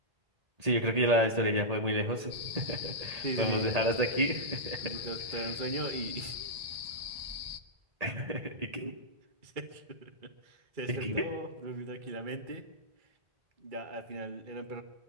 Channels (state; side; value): late; left; 1.8 ms